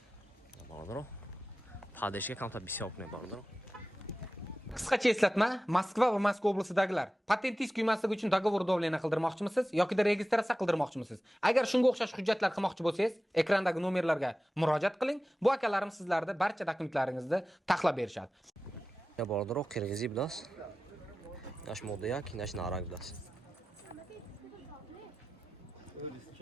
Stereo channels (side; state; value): both; normal; correlation 0.95